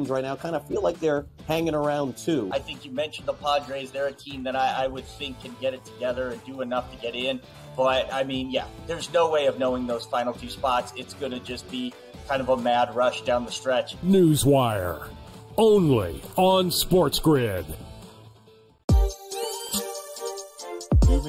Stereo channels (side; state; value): both; identical; correlation 1.00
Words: right now kind of feel like they're hanging around too. I think you mentioned the Padres. They're a team that I would think can get it together and do enough to get in. But, I mean, yeah, there's no way of knowing those final 2 spots. It's going to just be kind of a mad rush down the stretch. Newswire. Only on SportsGrid. You